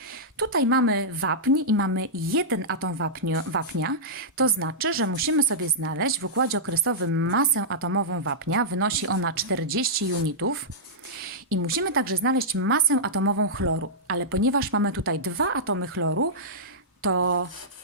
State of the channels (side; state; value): both; normal; correlation -0.12